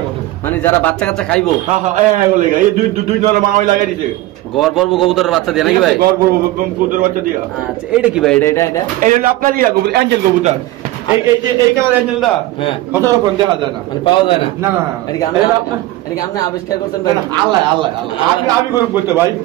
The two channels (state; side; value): quieter; left; 16.8 dB